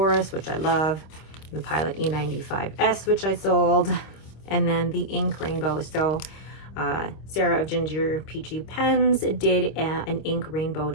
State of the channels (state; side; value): late; right; 26 ms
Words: which I love, the Pilot E95S, which I sold, and then the ink rainbow. So Sarah of Ginger Peachy Pens did an ink rainbow